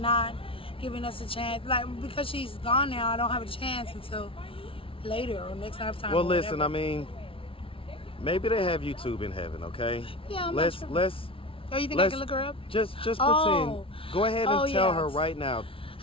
not giving us a chance. Like, because she's gone now, I don't have a chance until later or next time. Well, listen, I mean, maybe they have YouTube in heaven, okay? Yeah, let's. Oh, you think I can look her up? Just pretend. Go ahead and tell her right now.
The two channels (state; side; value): late; right; 0.26 ms